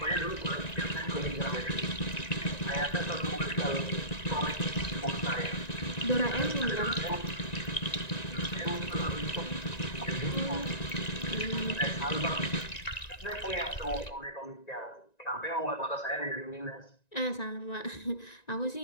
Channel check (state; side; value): late; right; 1.9 ms